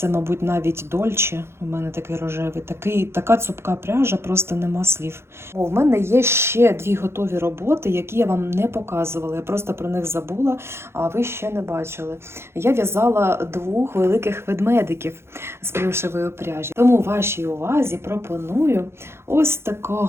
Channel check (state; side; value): late; left; 0.12 ms